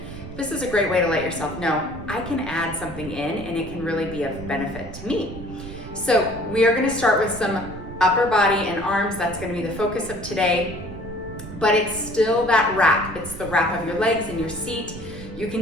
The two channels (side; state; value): right; noise; rumble, 12 dB below the sound